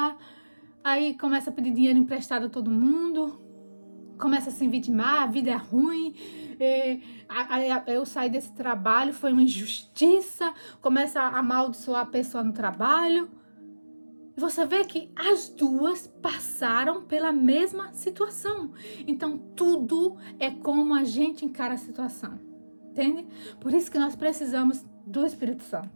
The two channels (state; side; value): inverted; both; correlation -1.00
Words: aí começa a pedir dinheiro emprestado a todo mundo, começa a se vitimar, a vida é ruim, eu saí desse trabalho, foi uma injustiça, começa a amaldiçoar a pessoa no trabalho. E você vê que as duas passaram pela mesma situação. Então, tudo é como a gente encara a situação. Entende? Por isso que nós precisamos do Espírito